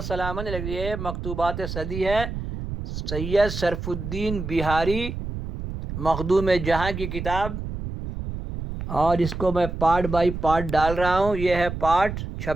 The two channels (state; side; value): noise; right; rumble, 6 dB below the sound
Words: سلام علیک. یہ مکتوبات صدی ہے، سید شرف الدین بہاری مخدوم جہاں کی کتاب، اور اس کو میں پارٹ بائی پارٹ ڈال رہا ہوں. یہ ہے پارٹ